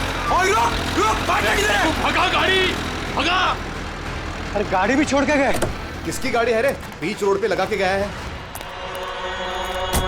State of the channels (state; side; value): identical; both; correlation 1.00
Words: भगा गाड़ी, भगा। अरे गाड़ी भी छोड़ के गए। किसकी गाड़ी है रे? बीच रोड पे लगा के गया है।